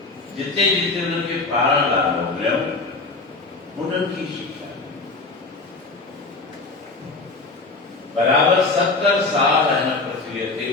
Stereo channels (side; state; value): right; quieter; 3.6 dB